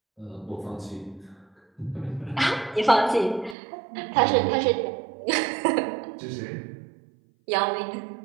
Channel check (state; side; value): drops out; left; at 3.6 s